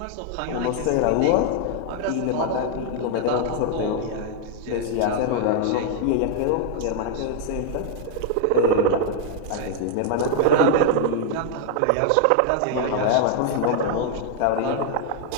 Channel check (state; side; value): different; both; correlation 0.00